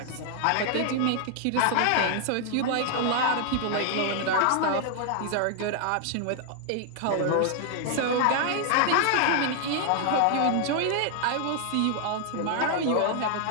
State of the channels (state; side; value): different; both; correlation 0.00